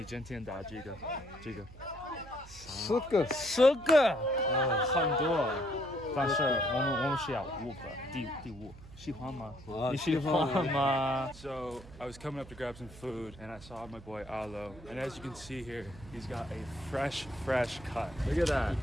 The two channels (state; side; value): noise; right; hum, 18 dB below the sound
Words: 今天打几个？10个，10个，很多。但是我们需要5个，第5。喜欢吗？你喜欢吗？ So I was coming up to grab some food and I saw my boy Alo, and as you can see here, he's got a fresh cut. Look at that.